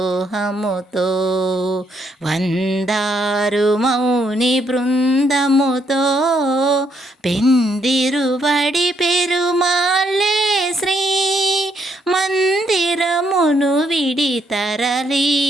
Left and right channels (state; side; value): normal; both; correlation 0.74